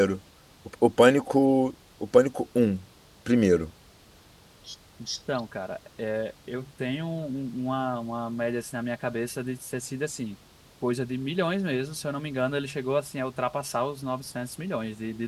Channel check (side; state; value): both; identical; correlation 1.00